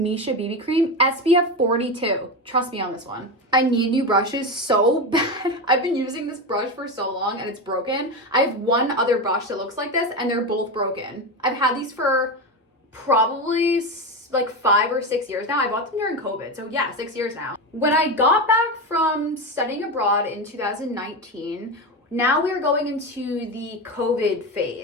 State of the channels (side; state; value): both; normal; correlation 0.17